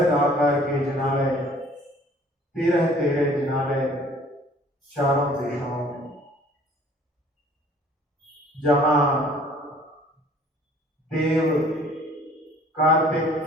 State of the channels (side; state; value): both; normal; correlation 0.53